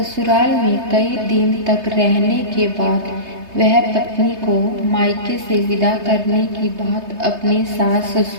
में कई दिन तक रहने के बाद वह पत्नी को मायके से विदा करने की बात अपने सास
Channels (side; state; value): left; late; 3.2 ms